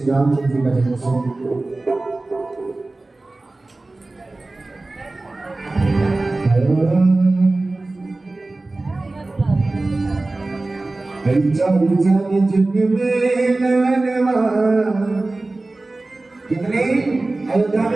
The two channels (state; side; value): quieter; left; 3.1 dB